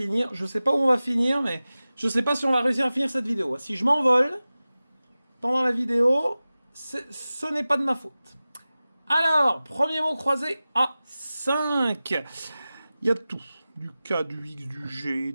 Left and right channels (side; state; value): both; inverted; correlation -0.96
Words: Je sais pas où on va finir, mais je sais pas si on va réussir à finir cette vidéo. Si je m'envole pendant la vidéo, ce n'est pas de ma faute. Alors, premier mot croisé à 5. Il y a tout. Du K, du X, du G,